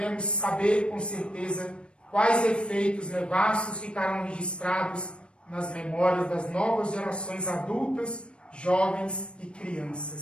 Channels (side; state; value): right; late; 0.057 ms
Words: saber com certeza quais efeitos nefastos ficarão registrados nas memórias das novas gerações adultas, jovens e